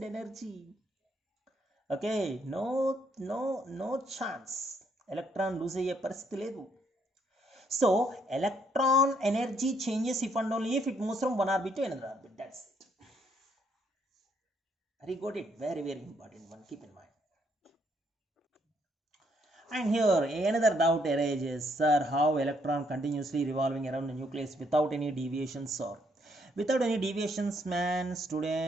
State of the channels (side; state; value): both; normal; correlation 0.71